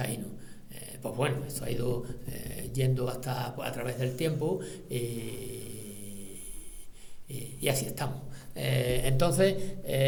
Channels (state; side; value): identical; both; correlation 1.00